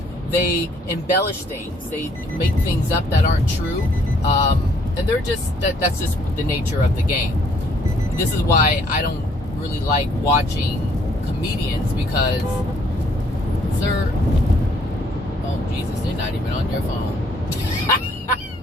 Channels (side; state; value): both; normal; correlation 0.65